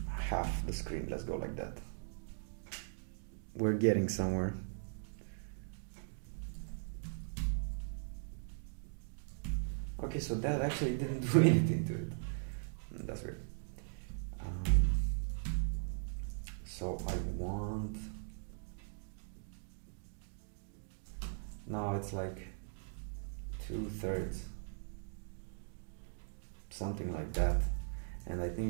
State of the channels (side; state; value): left; silent; digital silence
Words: Half the screen, let's go like that. We're getting somewhere. Okay, so that actually didn't do anything to it. That's weird. So I want... Now it's like 2/3. Something like that. And I